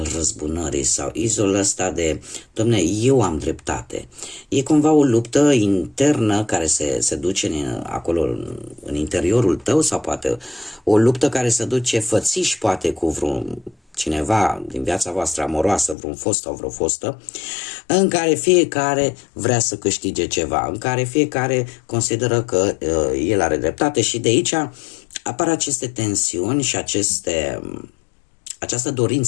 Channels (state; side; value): drops out; right; at 16.0 s